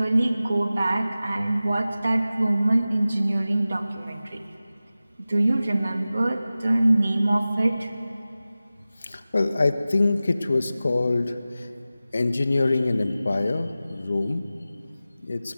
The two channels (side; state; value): both; inverted; correlation -0.96